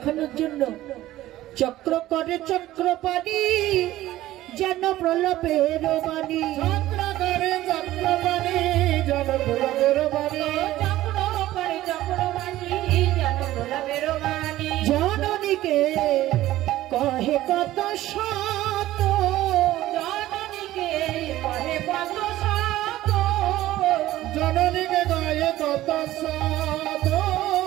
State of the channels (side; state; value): left; quieter; 15.2 dB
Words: জন্য চক্র করে চক্রপাণি, যেন প্রলাপের বাণী। চক্র করে চক্রপাণি, যেন প্রলাপের বাণী। জননীকে কহে কত শত, জননীকে কহে কত শত, জননীকে গায়ে কত সাধ,